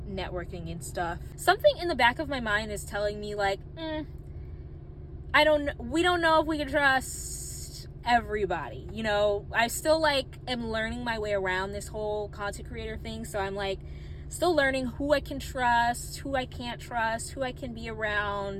networking and stuff. Something in the back of my mind is telling me like, we don't know if we can trust everybody. You know, I still like am learning my way around this whole content creator thing. So I'm like still learning who I can trust, who I can't trust, who I can be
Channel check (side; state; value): both; identical; correlation 1.00